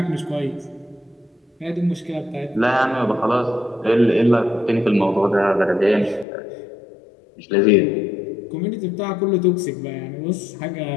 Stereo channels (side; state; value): right; drops out; at 6.2 s